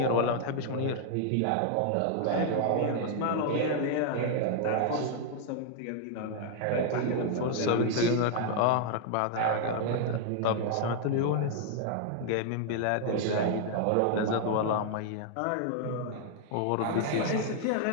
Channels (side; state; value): both; different; correlation 0.00